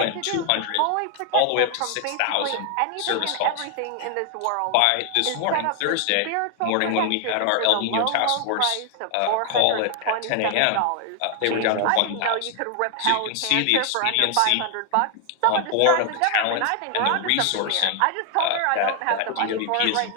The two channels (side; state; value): both; different; correlation 0.00